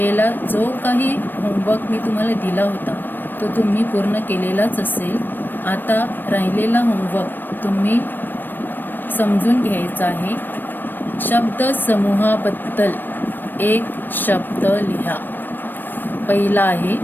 जो काही होमवर्क मी तुम्हाला दिला होता तो तुम्ही पूर्ण केलेलाच असेल. आता राहिलेला होमवर्क तुम्ही समजून घ्यायचा आहे. शब्द समूहाबद्दल एक शब्द लिहा. पहिला आहे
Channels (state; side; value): late; right; 0.093 ms